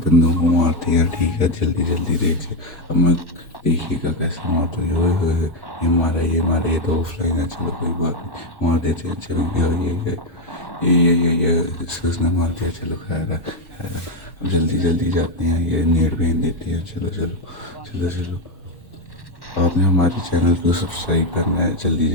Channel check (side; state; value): right; late; 1.1 ms